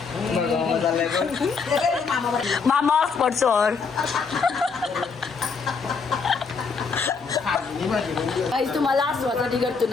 मामा हॉटस्पॉट सोड. काही तुम्हाला आसवासाठी करतो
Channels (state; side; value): quieter; right; 5.2 dB